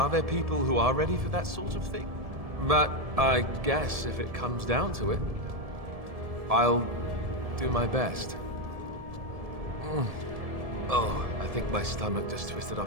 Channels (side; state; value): left; late; 1.7 ms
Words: there people who are ready for that sort of thing? But I guess if it comes down to it, I'll do my best. Oh, I think my stomach just twisted